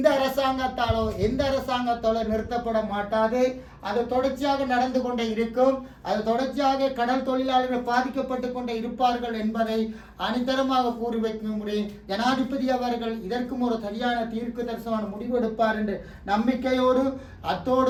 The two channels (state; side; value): identical; both; correlation 1.00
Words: அரசாங்கத்தாலோ எந்த அரசாங்கத்தாலோ நிறுத்தப்பட மாட்டாது. அது தொடர்ச்சியாக நடந்து கொண்டே இருக்கும். அது தொடர்ச்சியாக கடல் தொழிலாளர்கள் பாதிக்கப்பட்டு கொண்டே இருப்பார்கள் என்பதை அனிதரமாக கூறி வைக்க முடியும். ஜனாதிபதி அவர்கள் இதற்கும் ஒரு சரியான தீர்க்கு தரிசனமான முடிவு எடுப்பார் என்று நம்பிக்கையோடு